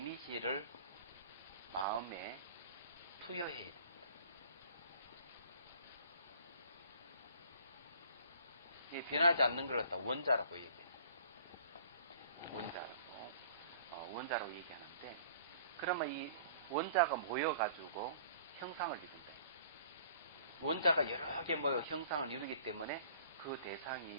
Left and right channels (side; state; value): both; inverted; correlation -0.52